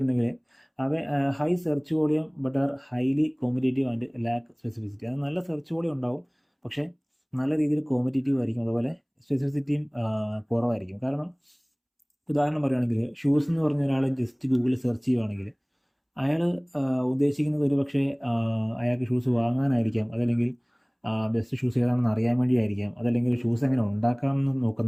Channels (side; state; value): both; identical; correlation 1.00